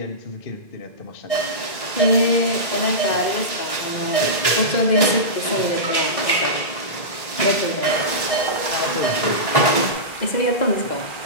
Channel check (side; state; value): right; late; 1.7 ms